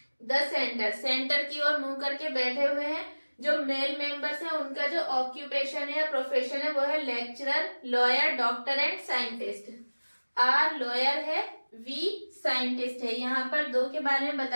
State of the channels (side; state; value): both; inverted; correlation -1.00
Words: द सेंटर, सेंटर की ओर मुंह करके बैठे हुए हैं। जो मेल मेंबर्स हैं उनका जो ऑक्यूपेशन है या प्रोफेशन है वो है lecturer, lawyer, doctor and scientist. R lawyer है, वी साइंटिस्ट है। यहाँ पर दो के बारे में